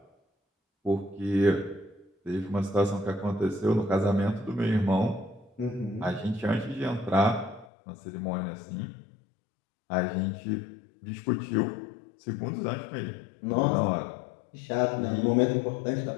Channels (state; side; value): drops out; right; at 7.7 s